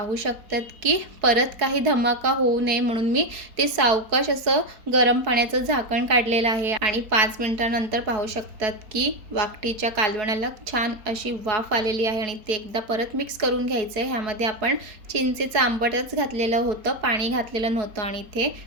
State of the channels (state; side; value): late; left; 4.7 ms